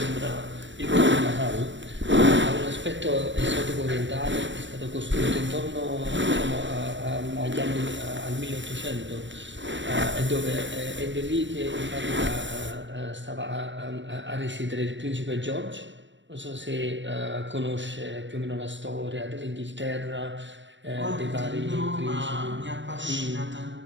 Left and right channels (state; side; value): late; left; 0.54 ms